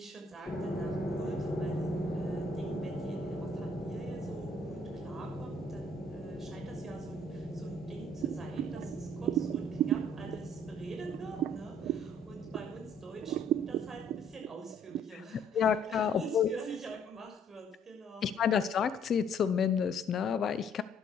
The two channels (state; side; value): normal; both; correlation 0.62